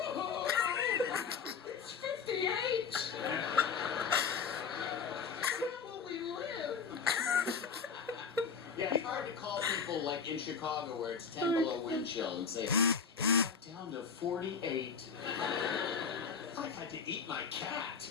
it's 58. Where will we live? Yeah, it's hard to call people like in Chicago where it's 10 below wind chill and say, down to 48. I had to eat my cat.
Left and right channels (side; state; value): right; quieter; 6.0 dB